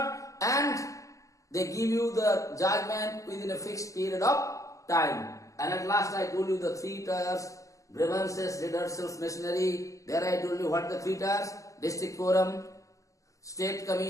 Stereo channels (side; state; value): right; late; 0.16 ms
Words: And they give you the judgment within a fixed period of time. And at last I told you the three tiers, grievances, redressals, machinery. There I told you what the three tiers, district forum, state